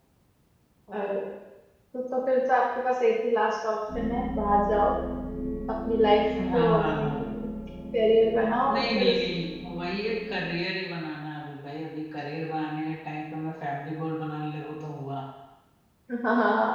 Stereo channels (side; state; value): both; identical; correlation 1.00